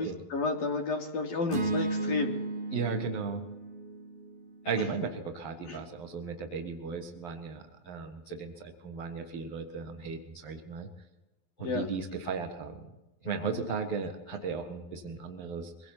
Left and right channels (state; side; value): late; right; 12 ms